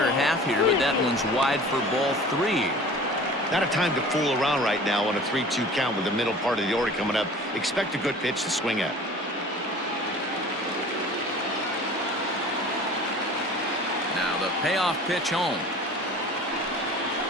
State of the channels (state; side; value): normal; both; correlation 0.43